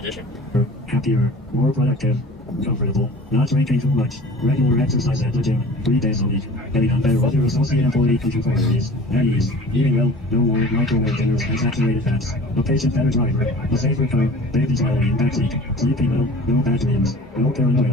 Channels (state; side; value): normal; both; correlation 0.42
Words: Happier, more productive, comfortable, not drinking too much, regular exercise at the gym, 3 days a week, getting on better with your associate employee contributories, at ease, eating well, no more microwave dinners and saturated fats, a patient better driver, a safer car, baby smiling in backseat, sleeping well, no bad dreams, no